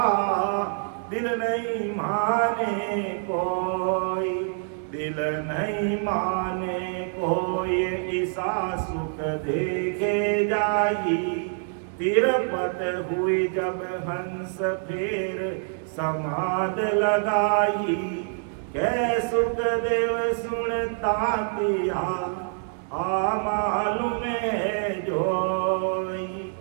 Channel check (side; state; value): left; silent; 61 dB below the other